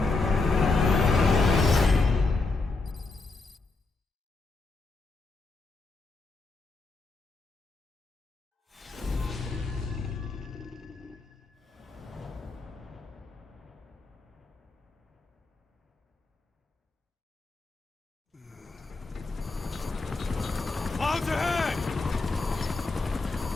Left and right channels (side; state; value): right; quieter; 3.7 dB